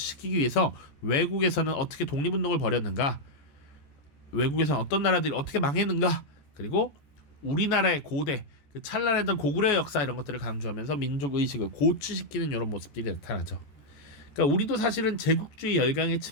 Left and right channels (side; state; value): right; late; 14 ms